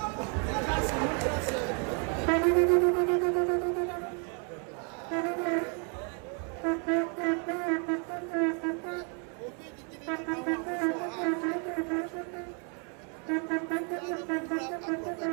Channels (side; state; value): left; quieter; 38.5 dB